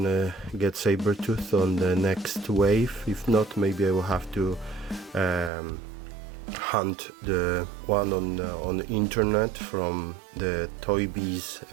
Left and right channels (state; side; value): drops out; left; at 5.5 s